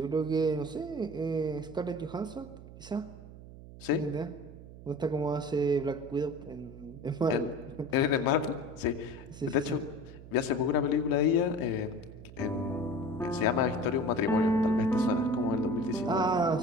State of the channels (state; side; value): noise; right; hum, 16 dB below the sound